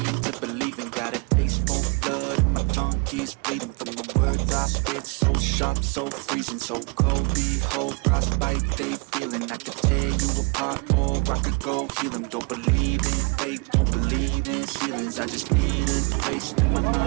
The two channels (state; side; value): quieter; left; 30.6 dB